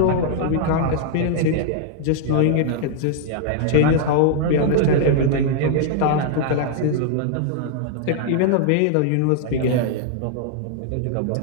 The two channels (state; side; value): different; both; correlation 0.00